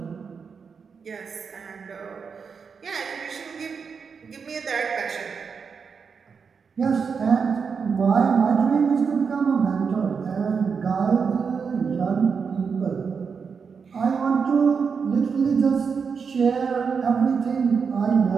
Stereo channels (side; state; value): left; quieter; 5.8 dB